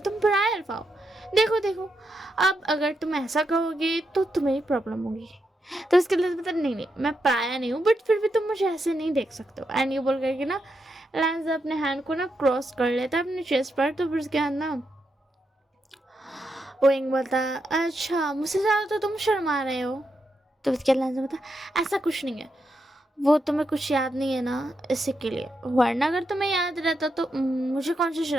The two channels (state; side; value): normal; both; correlation 0.84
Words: पराये अल्फा हो, देखो देखो अब अगर तुम ऐसा कहोगे तो तुम्हें ही प्रॉब्लम होगी। तो उसके लिए बता, नहीं नहीं मैं पराया नहीं हूँ, बट फिर भी तुम मुझे ऐसे नहीं देख सकते हो। एंड ये बोल करके ना लैंस अपने हैंड को ना क्रॉस कर लेता है अपने चेस्ट पर। तो फिर उसके बाद ना विंग बोलता, अच्छा मुझसे ज़्यादा तो तुम शर्मा रहे हो। तो उसके लैंस बोलता, ऐसा कुछ नहीं है, वो तुम्हें कुछ याद नहीं है ना इसी के लिए, वरना अगर तुम्हें याद रहता तो मुझे कौन सी